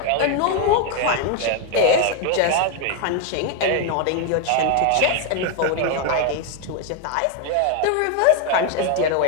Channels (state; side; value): different; both; correlation 0.01